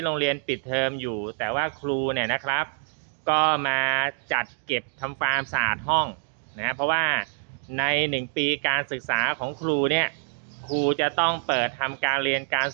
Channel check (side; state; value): left; silent; digital silence